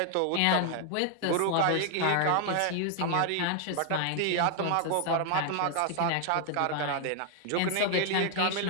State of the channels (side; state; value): both; different; correlation 0.00